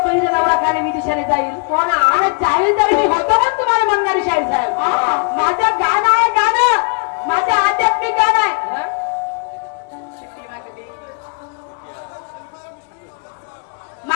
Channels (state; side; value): quieter; right; 38.2 dB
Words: बहिणीचा नवरा काय विदेशाला जाईल. हो ना आणि जाईल तर मी होतो का तुम्हाला म्हणणारी शाहीर साहेब. माझं गाणं आहे गाणं. माझं आध्यात्मिक गाणं आहे.